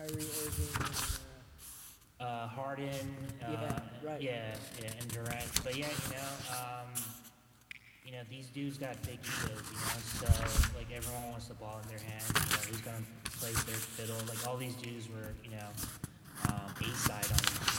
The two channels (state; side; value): identical; both; correlation 1.00